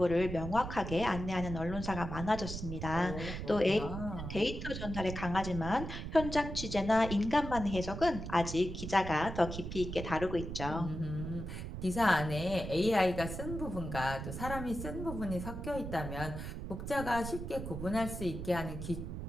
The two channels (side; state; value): right; noise; rumble, 7 dB below the sound